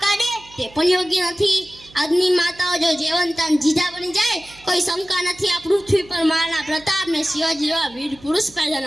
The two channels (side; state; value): right; noise; hum, 24 dB below the sound